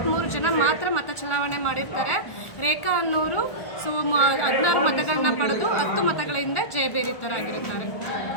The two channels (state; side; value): late; right; 1.4 ms